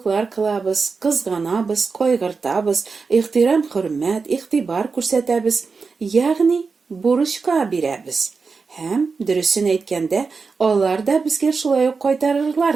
кылабыз, кызганабыз, кайгыртабыз, ихтирам, хөрмәт, игътибар күрсәтәбез, ягъни бурычка бирәбез. Һәм, дөресен әйткәндә, алар да безгә шулай ук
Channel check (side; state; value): left; quieter; 4.8 dB